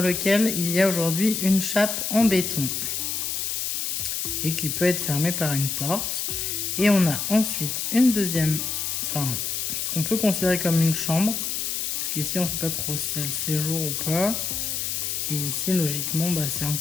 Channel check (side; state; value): left; noise; hiss, 2 dB below the sound